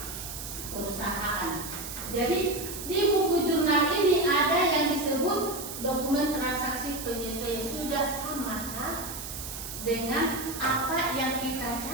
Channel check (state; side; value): noise; right; hiss, 8 dB below the sound